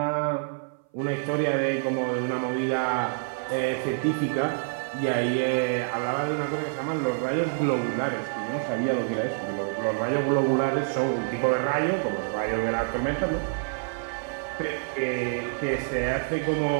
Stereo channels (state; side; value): silent; left; 56 dB below the other